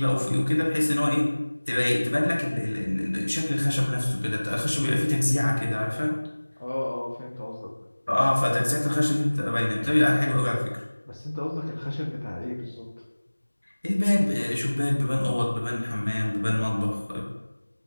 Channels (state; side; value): inverted; both; correlation -1.00